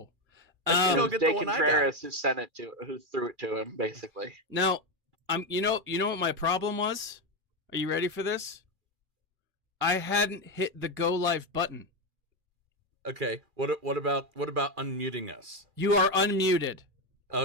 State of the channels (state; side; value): late; left; 2.4 ms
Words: I think It I'll was get De the one I got. Contreras who threw it to him, basically. Now, you know what my problem was? Are you ready for this? I hadn't hit the go live button. Okay. What about unmuting us? You are unmuted.